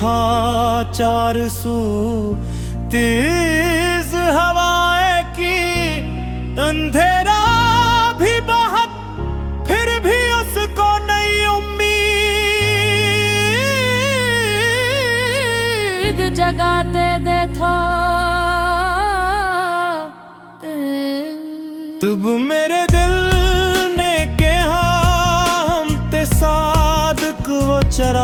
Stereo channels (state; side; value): identical; both; correlation 1.00